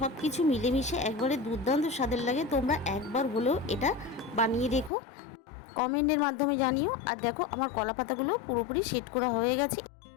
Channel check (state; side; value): drops out; right; at 4.9 s